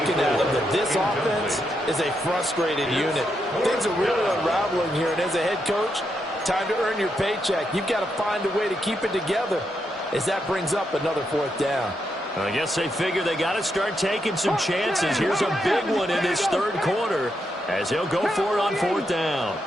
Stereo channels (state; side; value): normal; both; correlation 0.82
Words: at him that this offense is a frustrated unit. Things are really unraveling here, and as a head coach, time to earn your paycheck. You've got to find a way to keep it together as that brings up another 4th down. I guess they figure they got to start taking some chances. Here's a big one in this 3rd quarter as he'll go for it on 4th down.